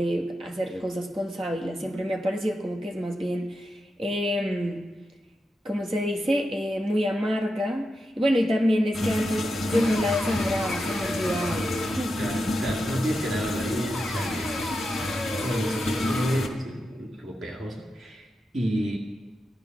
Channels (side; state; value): both; normal; correlation 0.88